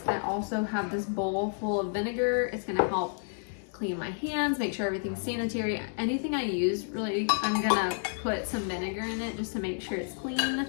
I also have this bowl full of vinegar. It's gonna help clean my hands, make sure everything's sanitary. Anything I use, really, I'm gonna put some vinegar in it just to make sure it's clean,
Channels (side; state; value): right; silent; digital silence